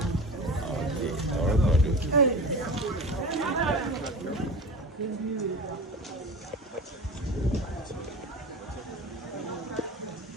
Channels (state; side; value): normal; both; correlation 0.32